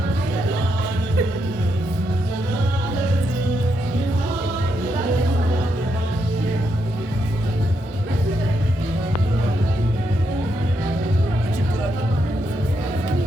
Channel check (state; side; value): normal; both; correlation 0.80